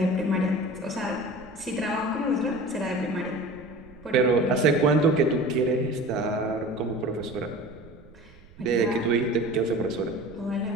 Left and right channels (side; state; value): right; noise; rumble, 23 dB below the sound